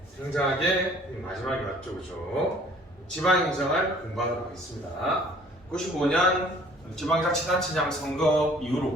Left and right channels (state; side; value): normal; both; correlation 0.55